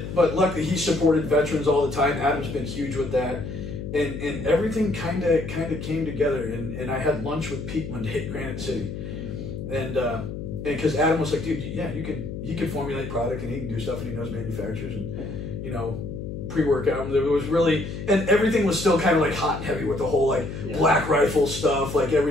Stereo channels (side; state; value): left; noise; hum, 7 dB below the sound